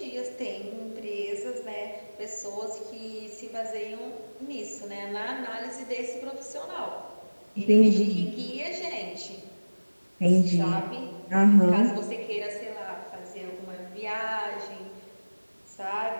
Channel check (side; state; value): both; inverted; correlation -1.00